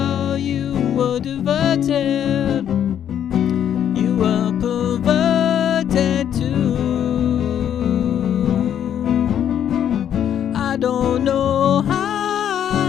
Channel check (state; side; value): quieter; right; 9.7 dB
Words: you were diverted, you were perverted too. I don't know how